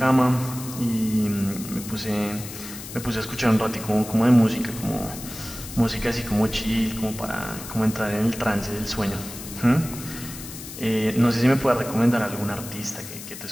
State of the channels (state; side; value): noise; left; hiss, 12 dB below the sound